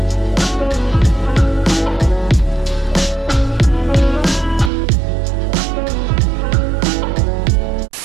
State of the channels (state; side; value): drops out; left; at 4.7 s